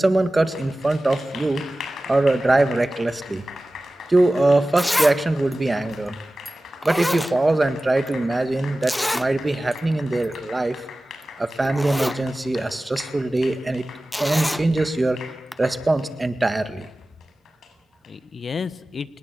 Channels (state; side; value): normal; both; correlation 0.96